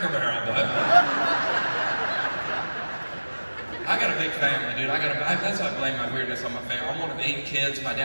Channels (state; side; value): inverted; both; correlation -1.00